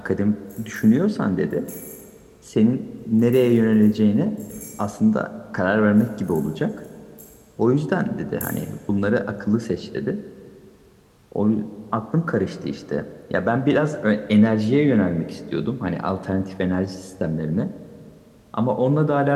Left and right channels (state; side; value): identical; both; correlation 1.00